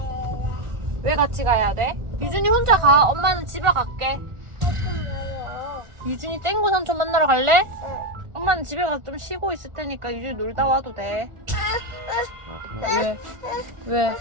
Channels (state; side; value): late; left; 1.4 ms